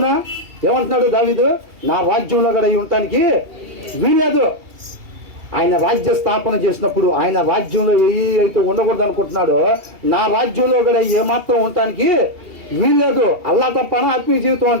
ఏమంటున్నాడు దావీదు? నా రాజ్యంలో కూడా ఉండటానికి వీల్లేదు. ఆయన రాజ్య స్థాపన చేసినప్పుడు ఆయన రాజ్యంలో ఏ అయితే ఉండకూడదు అనుకుంటున్నాడో నా రాజ్యంలో కూడా ఏమాత్రం ఉండటానికి వీల్లేదు. అల్లా తప్ప ఆత్మీయ జీవితం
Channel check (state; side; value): late; left; 2.8 ms